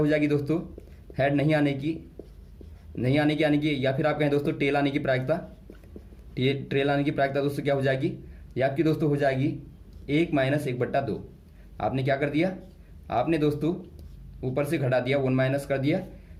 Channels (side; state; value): both; identical; correlation 1.00